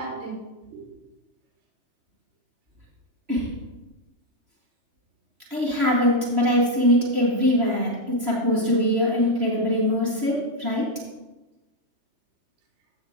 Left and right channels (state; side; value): late; left; 3.0 ms